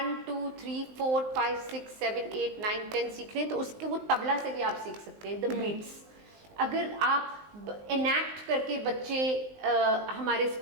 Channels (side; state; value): left; late; 19 ms